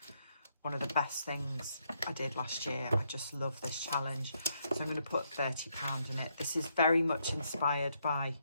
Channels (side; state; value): both; inverted; correlation -0.75